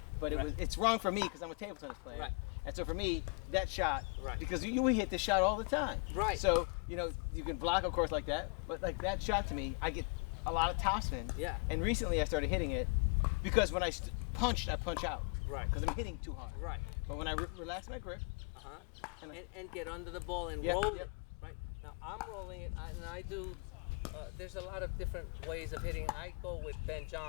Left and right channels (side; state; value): right; quieter; 36.1 dB